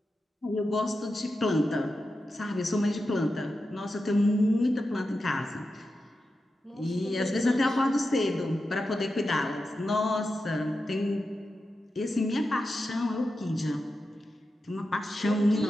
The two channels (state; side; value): normal; both; correlation 0.90